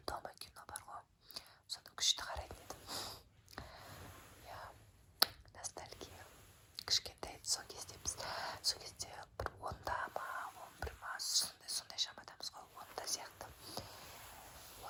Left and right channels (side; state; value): both; identical; correlation 1.00